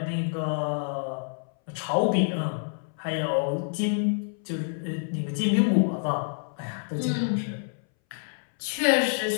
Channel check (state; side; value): silent; right; 60 dB below the other